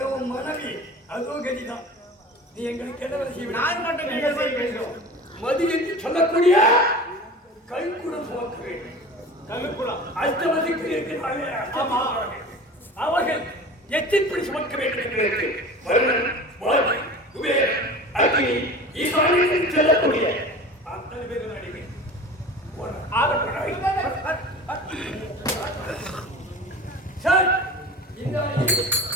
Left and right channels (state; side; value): normal; both; correlation 0.37